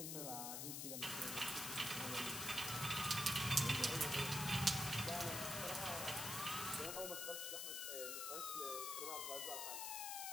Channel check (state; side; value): noise; left; hiss, 3 dB below the sound